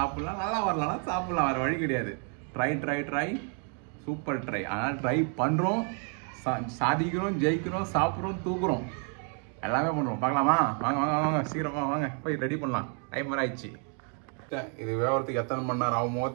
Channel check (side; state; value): left; quieter; 40.0 dB